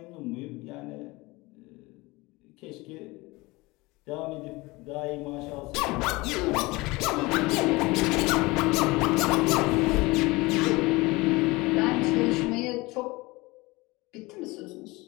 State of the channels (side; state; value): right; quieter; 22.6 dB